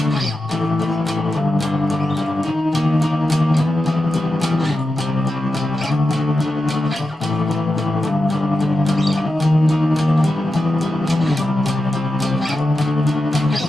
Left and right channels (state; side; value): normal; both; correlation 0.90